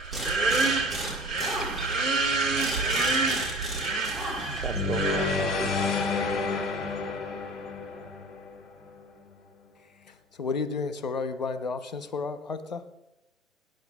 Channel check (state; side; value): normal; both; correlation 0.40